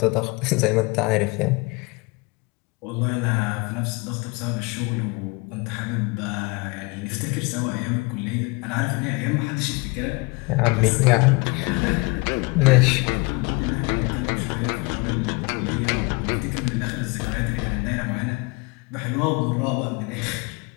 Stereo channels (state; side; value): quieter; right; 27.6 dB